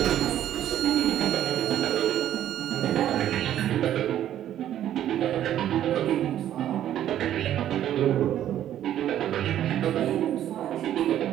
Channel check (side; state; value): left; quieter; 11.5 dB